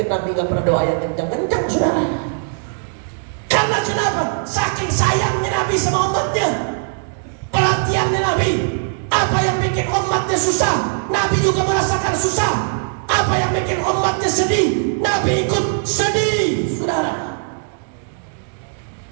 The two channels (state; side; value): silent; left; digital silence